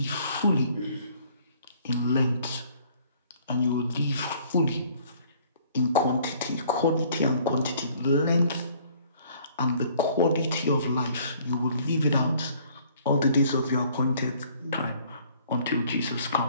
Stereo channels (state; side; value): inverted; both; correlation -0.58